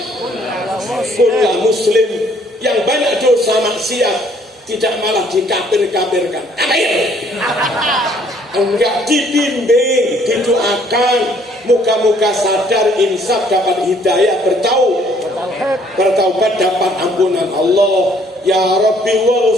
kulla muslim. Yang banyak dosa maksiat, tidak malah dikafir-kafirkan. Kafir. Enggak, dibimbing, didoakan. Muka-muka sadar, insaf, dapat hidayah, bertaubat, dapat ampunan Allah. Ya Rabbi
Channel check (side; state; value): both; normal; correlation 0.62